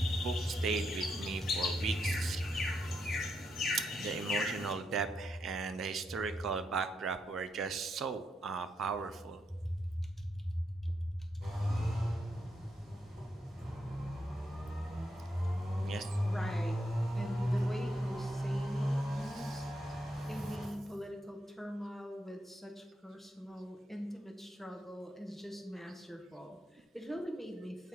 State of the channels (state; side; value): normal; both; correlation 0.81